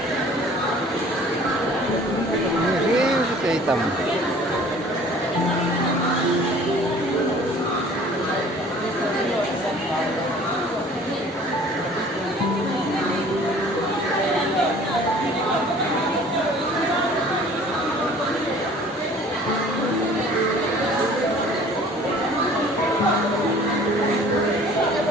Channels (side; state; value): both; normal; correlation 0.50